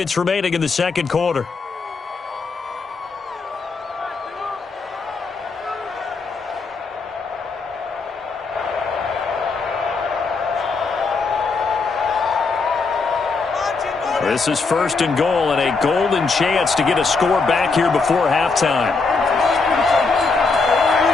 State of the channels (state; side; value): quieter; right; 4.3 dB